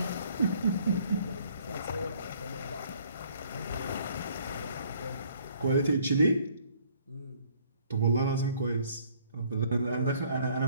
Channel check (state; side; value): inverted; both; correlation -0.61